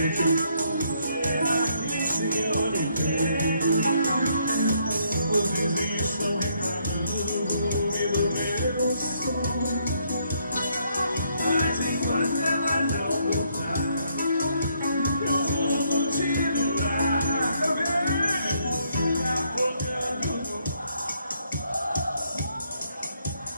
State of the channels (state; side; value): inverted; both; correlation -0.72